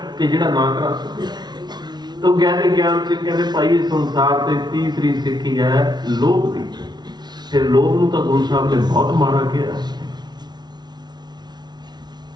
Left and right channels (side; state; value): left; late; 0.20 ms